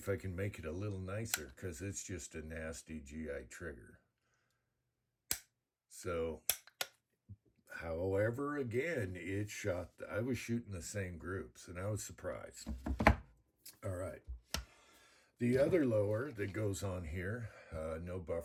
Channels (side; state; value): both; identical; correlation 1.00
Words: I can make it a little nicer, because it's just a nasty GI trigger. So, however, again, it shot, I was shooting the same groups, and I was surprised. All right. The other lower that goes on here, no